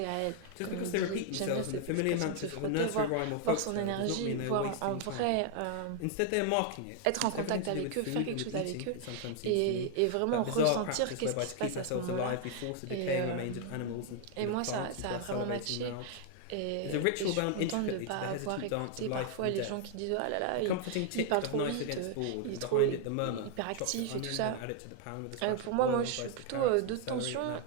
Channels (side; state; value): both; different; correlation 0.00